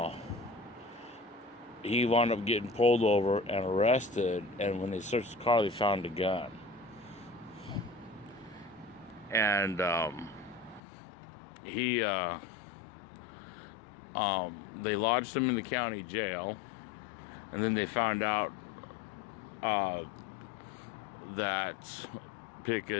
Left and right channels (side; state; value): right; drops out; at 10.8 s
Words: he wound up getting pulled over and arrested. And when they searched the car, they found a gun. And they lodged him in the county jail, and then they found out that